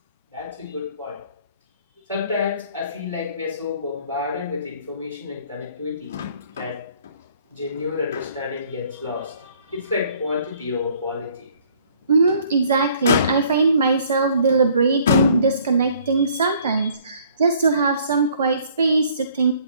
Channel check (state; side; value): inverted; both; correlation -0.59